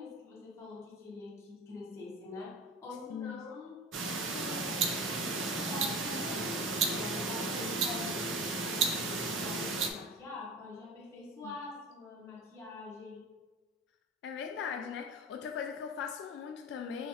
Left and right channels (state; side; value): normal; both; correlation 0.32